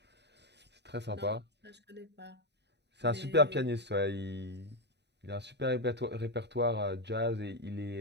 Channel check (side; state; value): left; late; 0.50 ms